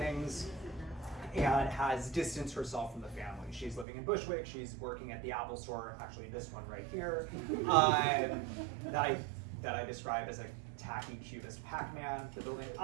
and has distanced herself from the family. She's living in Bushwick, she's working at the Apple store, actually this one right here, that I describe as a tacky cubist Pac-Man, the building.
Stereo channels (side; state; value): left; drops out; at 3.9 s